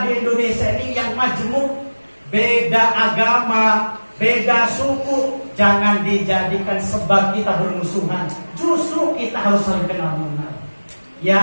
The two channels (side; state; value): both; inverted; correlation -1.00